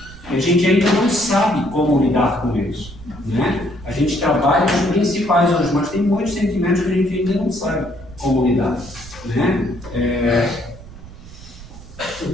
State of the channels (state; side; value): noise; right; rumble, 17 dB below the sound